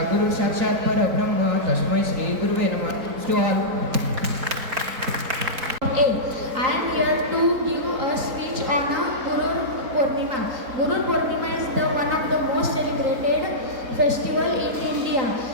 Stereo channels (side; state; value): left; late; 3.8 ms